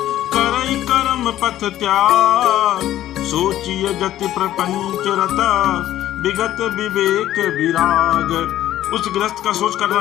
करई कर्म पथ त्याग। सोचिए गति प्रपंच रत, विगत विवेक विराग। उस गृहस्थ का सोच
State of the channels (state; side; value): quieter; right; 13.0 dB